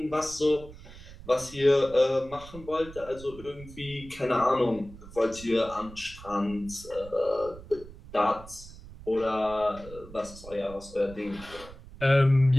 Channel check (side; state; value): right; noise; rumble, 17 dB below the sound